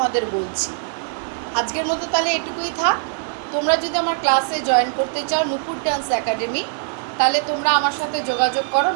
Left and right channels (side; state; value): left; silent; 60 dB below the other